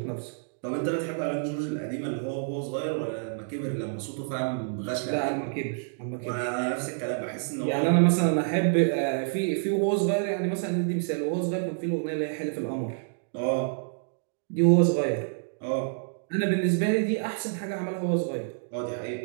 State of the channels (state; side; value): silent; left; digital silence